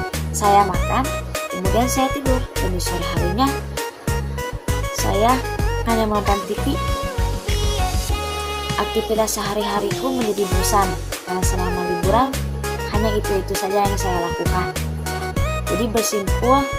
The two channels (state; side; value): identical; both; correlation 1.00